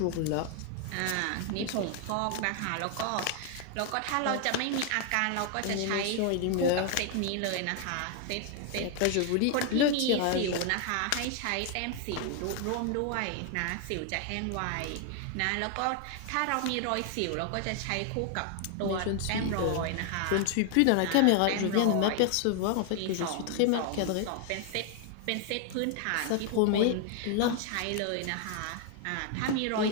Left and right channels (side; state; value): both; different; correlation 0.00